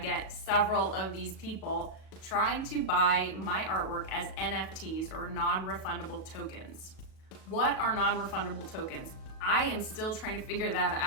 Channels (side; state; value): right; late; 37 ms